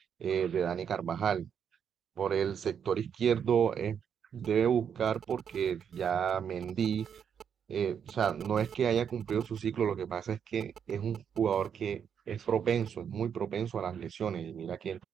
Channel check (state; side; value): quieter; left; 7.8 dB